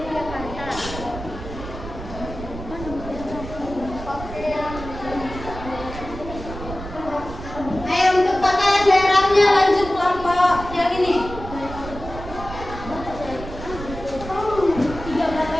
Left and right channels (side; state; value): right; noise; rumble, 11 dB below the sound